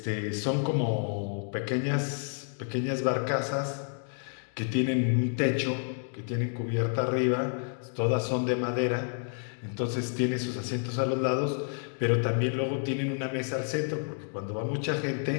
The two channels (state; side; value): silent; right; 57 dB below the other